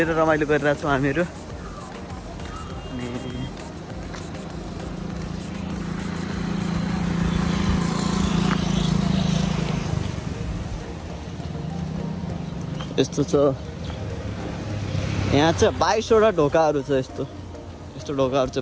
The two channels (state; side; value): identical; both; correlation 1.00